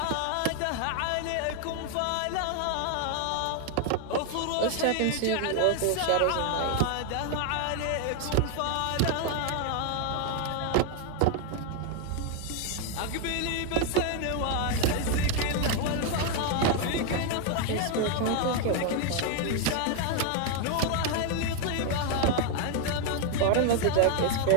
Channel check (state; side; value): different; both; correlation 0.01